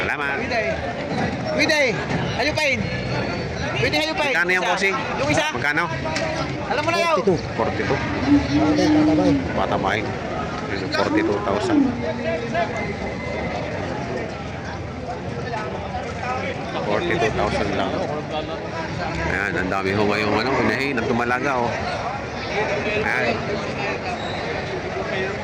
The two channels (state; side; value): identical; both; correlation 1.00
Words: Widay, hayupin. Widay, hayupin. Magkano yung bossing? Yung isa. Magkano? Alam mo na yaw. 42. Patabay. 42,000. 42,000 lang. Ayan, ang dami ho ngayong unahin at tumalaga oh. Ayan.